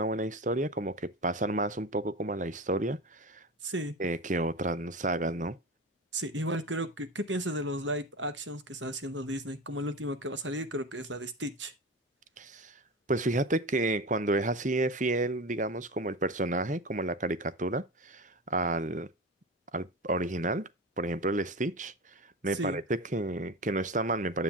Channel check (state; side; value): normal; both; correlation 0.26